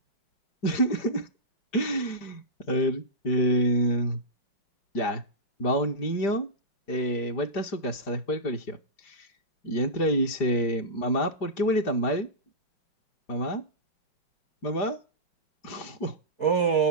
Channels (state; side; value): late; right; 5.0 ms